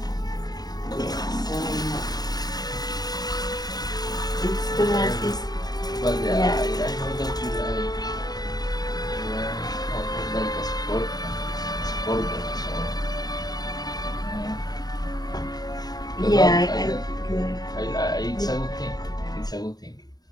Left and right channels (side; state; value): right; late; 0.19 ms